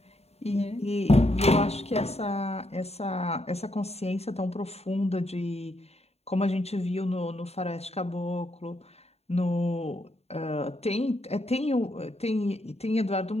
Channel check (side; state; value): right; late; 0.30 ms